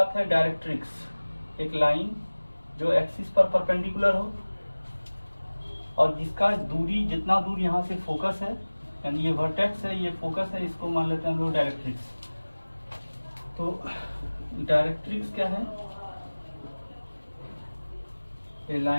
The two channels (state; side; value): inverted; both; correlation -1.00